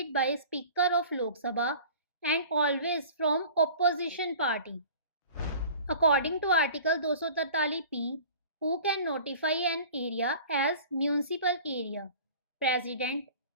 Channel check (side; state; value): both; inverted; correlation -0.43